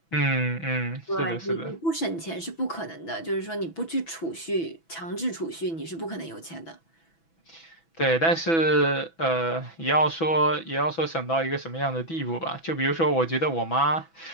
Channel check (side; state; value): right; late; 6.1 ms